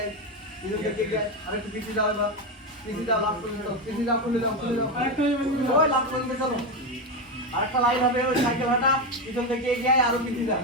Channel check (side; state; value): both; normal; correlation 0.12